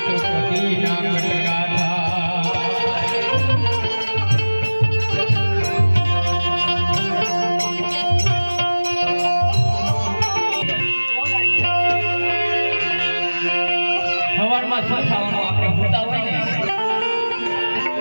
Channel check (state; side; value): inverted; both; correlation -1.00